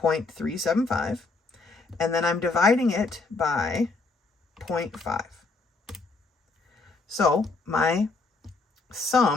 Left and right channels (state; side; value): quieter; right; 3.8 dB